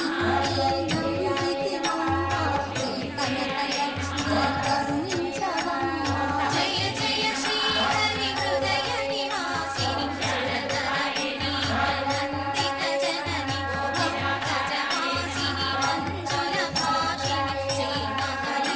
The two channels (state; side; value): identical; both; correlation 1.00